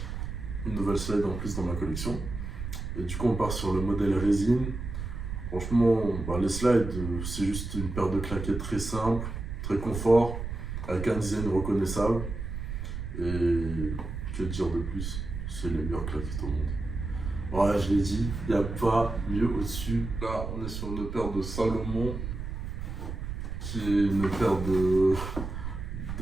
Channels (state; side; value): noise; right; rumble, 6 dB below the sound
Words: une nouvelle slide en plus dans ma collection. Et du coup, on part sur le modèle résine. Franchement, les slides, c'est juste une paire de claquettes très simple, très confort, avec un design reconnaissable. Et que dire de plus? C'est les meilleures claquettes au monde. Voilà, je l'ai dit, il n'y a pas mieux au-dessus. Là, on est sur une paire de Salomon, qui est une paire de